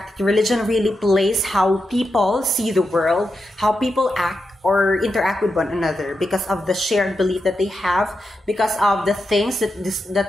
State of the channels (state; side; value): normal; both; correlation 0.87